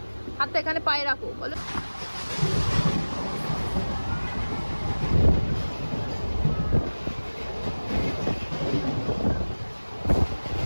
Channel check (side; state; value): both; inverted; correlation -1.00